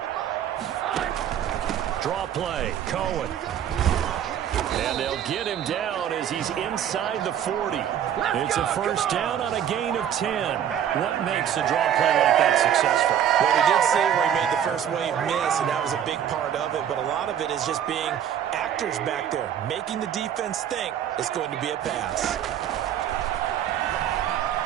Draw play, Cohen. And they'll get him down as he's inside the 40. It's a 1st down on a gain of 10. What makes a draw play like that successful? Well, we did see where he made the first wave miss, and that was a big part of it. But a lot of it is just being actors back there, making the defense think it's going to be a pass.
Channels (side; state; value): left; quieter; 9.7 dB